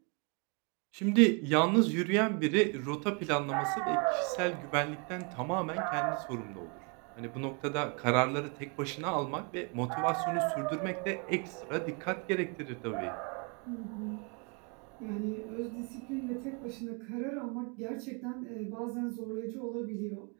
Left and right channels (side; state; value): left; quieter; 34.6 dB